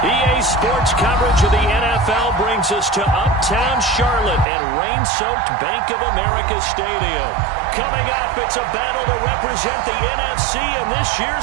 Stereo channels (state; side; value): drops out; left; at 4.5 s